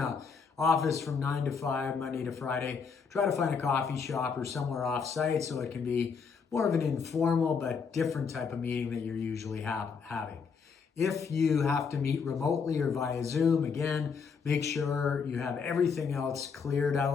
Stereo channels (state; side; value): quieter; right; 5.8 dB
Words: office from 9 to 5, Monday to Friday, try to find a coffee shop or somewhere off-site so it can be more of an informal but different type of meeting that you're usually having. If you have to meet remotely or via Zoom, again, make sure you have everything else cleared